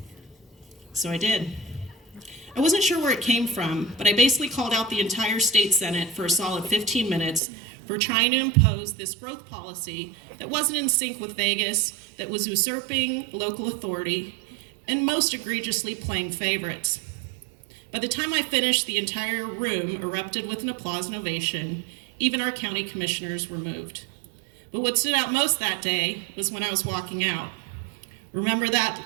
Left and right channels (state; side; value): drops out; left; at 7.4 s